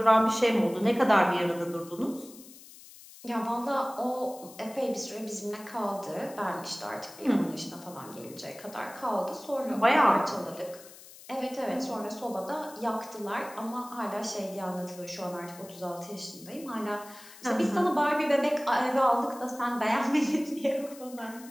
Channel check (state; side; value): noise; left; hiss, 19 dB below the sound